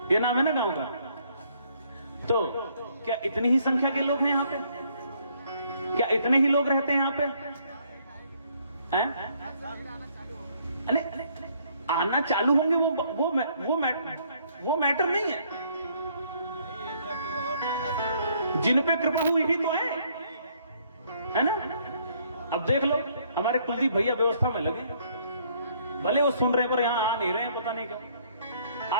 ये नाम है ना गांव का। तो क्या इतनी ही संख्या के लोग हैं यहाँ पे? क्या इतने ही लोग रहते हैं यहाँ पे? अरे आना चालू होंगे, वो मैटर नहीं है। जिन पे कृपा हुई ही तो है ना? अब देख लो, हमारे कुलदीप भैया व्यवस्था में लगे, भले वो सुन रहे हैं पर यहां आ नहीं रहे हैं, पता नहीं क्यों।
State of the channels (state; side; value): inverted; both; correlation -0.66